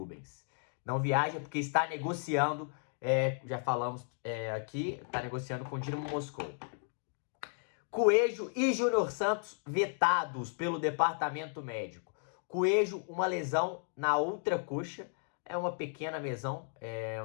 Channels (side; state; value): right; silent; 55 dB below the other